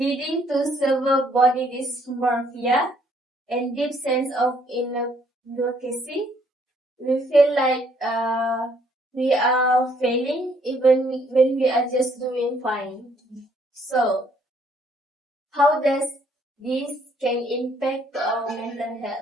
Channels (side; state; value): both; normal; correlation 0.66